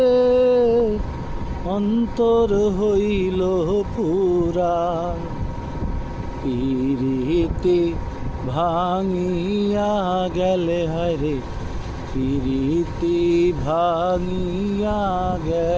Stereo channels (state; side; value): identical; both; correlation 1.00